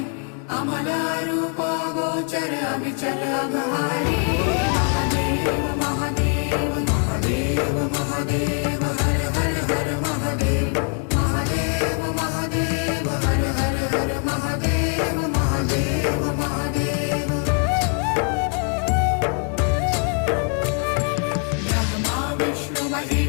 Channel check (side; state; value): right; quieter; 39.9 dB